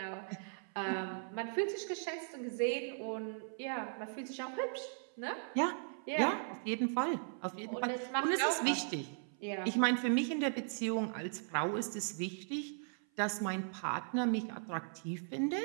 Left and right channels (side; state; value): left; silent; 53 dB below the other